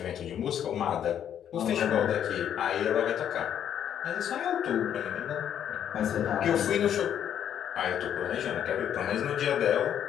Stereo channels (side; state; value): right; quieter; 9.6 dB